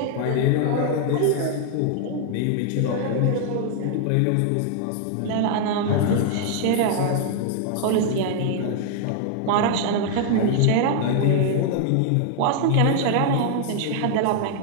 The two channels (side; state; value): both; different; correlation 0.00